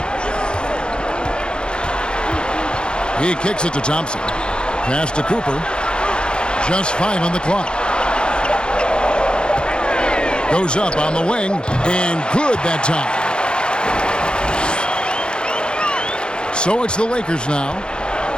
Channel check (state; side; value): late; right; 0.050 ms